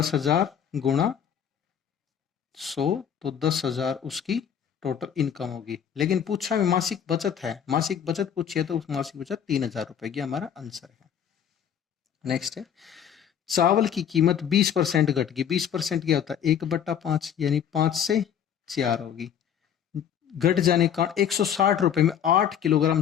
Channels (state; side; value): quieter; right; 8.8 dB